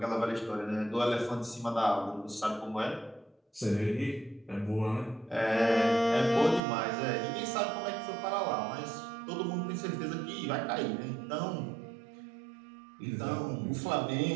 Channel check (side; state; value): left; drops out; at 6.6 s